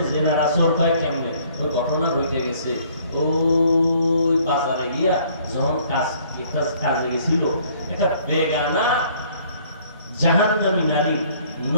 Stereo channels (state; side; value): inverted; both; correlation -0.59